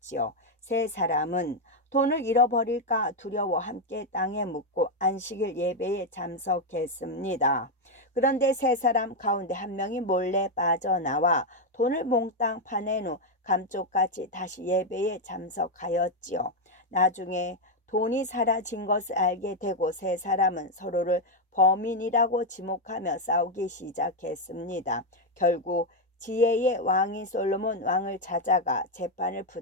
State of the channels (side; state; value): both; normal; correlation 0.03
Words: 3사람은 돈을 잃어버릴까 두려워 함께 땅에 묻고 안식일 예배에 참석했습니다. 그런데 3사람 가운데 한 명이 몰래 빠져나와 돈을 몽땅 파낸 후 감쪽같이 다시 예배에 참석하였지요. 나중에 돈이 사라진 것을 알게 되고 3사람은 서로를 범인이라고 지목하며 싸우기 시작했습니다. 결국 지혜의 왕인 솔로몬 왕을 찾아가 재판을